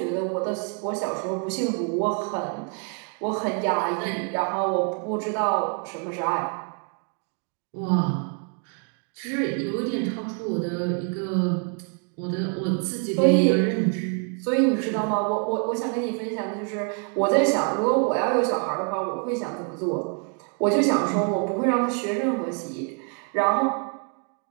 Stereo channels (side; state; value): left; quieter; 39.2 dB